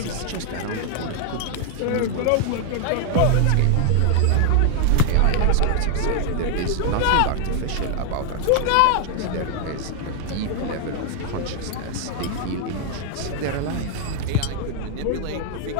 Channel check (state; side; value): different; both; correlation 0.00